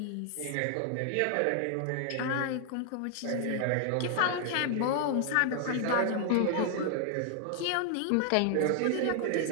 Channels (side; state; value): both; different; correlation 0.00